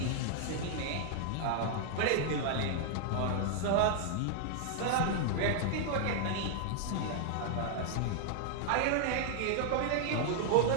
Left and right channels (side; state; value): both; different; correlation 0.00